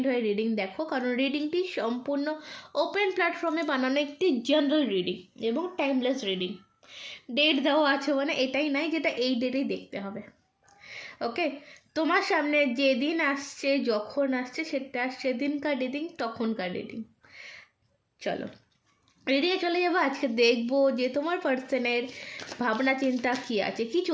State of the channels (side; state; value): both; identical; correlation 1.00